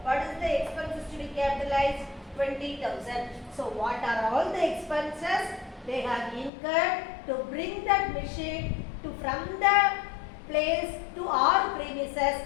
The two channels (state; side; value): drops out; right; at 6.5 s